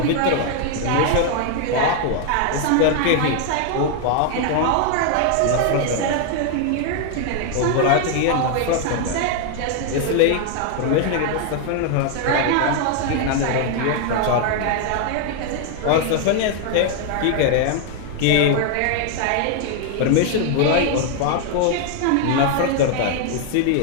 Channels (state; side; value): different; both; correlation 0.00